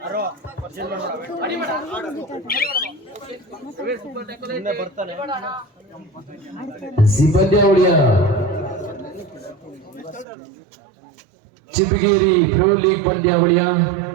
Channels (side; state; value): left; drops out; at 10.2 s